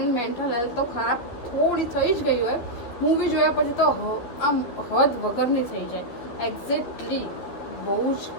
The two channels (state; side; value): late; right; 12 ms